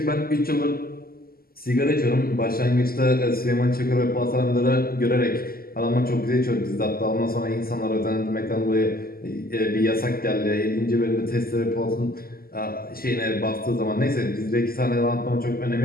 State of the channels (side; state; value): right; late; 0.43 ms